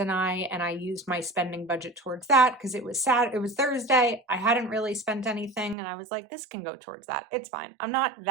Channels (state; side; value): drops out; left; at 5.8 s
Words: I used my spending budget towards that because it was Thursday. I hadn't really spent anything and I was like, this can go towards that. It's fine. I'm not